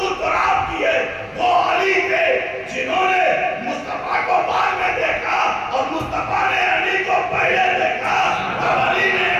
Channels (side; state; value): both; identical; correlation 1.00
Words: تراب کی ہے، وہ علی تھے جنہوں نے مصطفیٰ کو بعد میں دیکھا اور مصطفیٰ نے علی کو پہلے دیکھا۔ اب علی نے